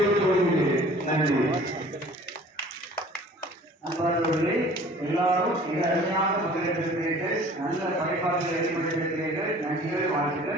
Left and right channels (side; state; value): both; normal; correlation 0.49